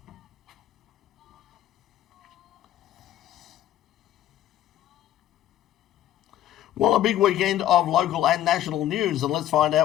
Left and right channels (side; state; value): right; quieter; 12.4 dB